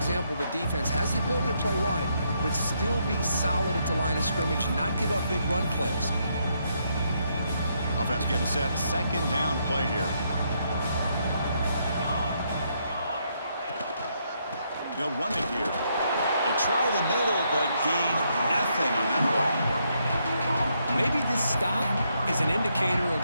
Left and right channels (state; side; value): inverted; both; correlation -0.76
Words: The defense has the ability to play wide, but still be solid at the line of scrimmage, not give up big run plays. Offense getting set. Second down play here. They'll run it here. They try the middle, but gain nothing on that play. Maybe this stop is an indicator of